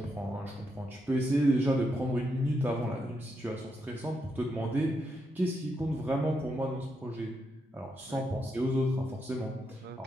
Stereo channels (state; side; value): normal; both; correlation 0.82